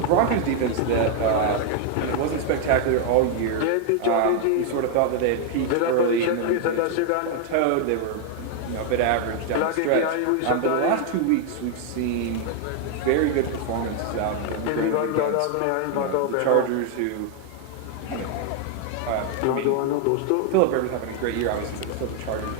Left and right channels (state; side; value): different; both; correlation 0.00